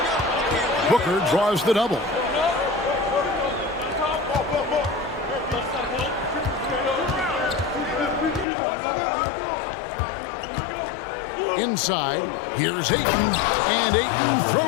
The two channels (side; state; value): right; drops out; at 8.5 s